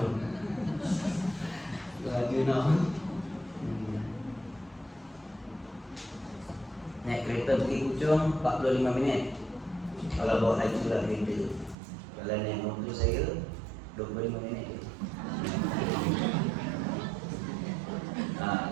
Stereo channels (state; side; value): drops out; left; at 11.8 s